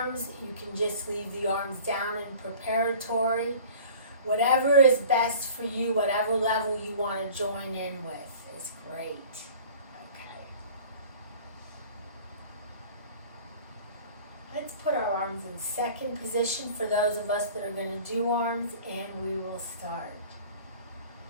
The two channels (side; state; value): both; inverted; correlation -0.45